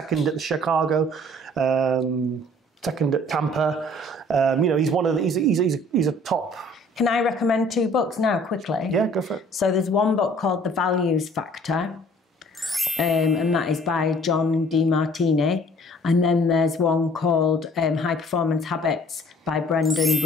at the Chicago, second at Tampa. He's one of the, he's a top. Can I recommend 2 books now, quickly? Yeah, go for it. So there's one book called The Values Factor, and that is by John DeMartini. And then there's one called High Performance Habits by Brendan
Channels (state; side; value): normal; both; correlation 0.54